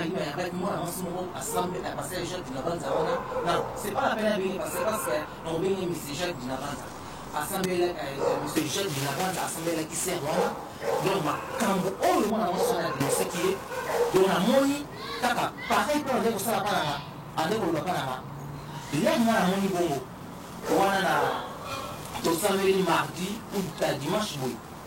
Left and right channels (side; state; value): both; identical; correlation 1.00